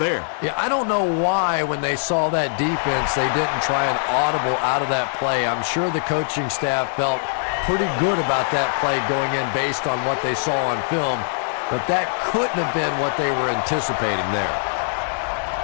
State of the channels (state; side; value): silent; right; 60 dB below the other